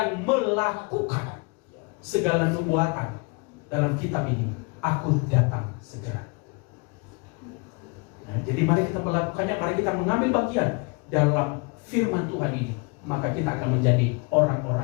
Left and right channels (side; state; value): right; quieter; 31.3 dB